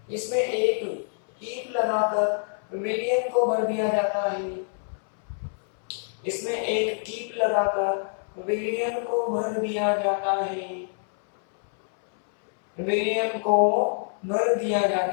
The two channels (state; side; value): silent; right; 61 dB below the other